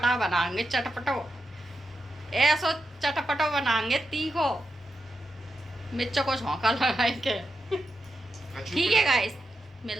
बनाएंगे, चटपटो ऐसो चटपटो बनाएंगे, तीखो मिर्चों को झोंका लगाएंगे। ठीक है गाइस,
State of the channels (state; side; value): normal; both; correlation 0.87